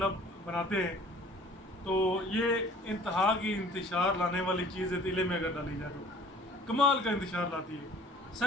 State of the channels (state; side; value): normal; both; correlation 0.51